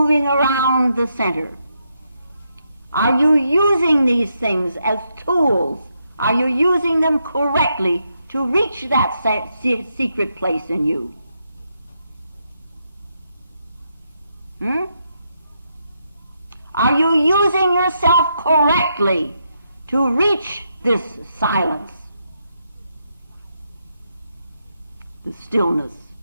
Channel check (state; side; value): inverted; both; correlation -0.81